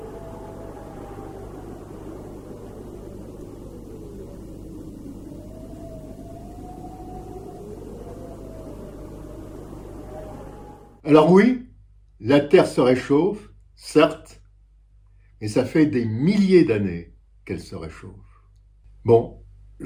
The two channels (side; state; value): both; identical; correlation 1.00